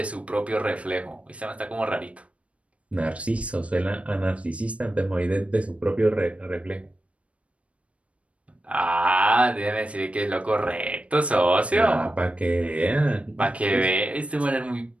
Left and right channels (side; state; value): left; late; 0.063 ms